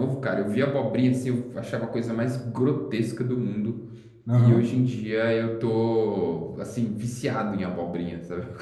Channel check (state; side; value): identical; both; correlation 1.00